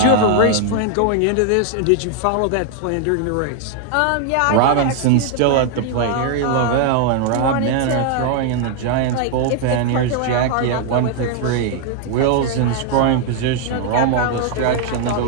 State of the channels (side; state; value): both; different; correlation 0.00